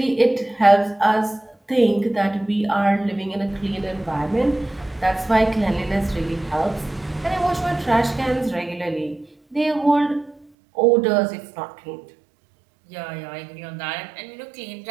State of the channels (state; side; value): drops out; left; at 10.5 s